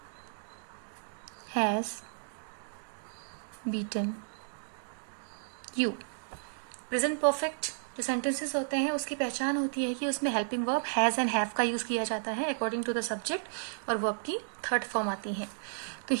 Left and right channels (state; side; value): silent; left; digital silence